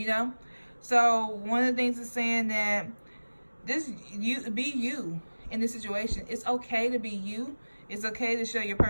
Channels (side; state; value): both; inverted; correlation -1.00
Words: So one of the things is saying that be you in this situation. It's okay to be you. It's okay to show your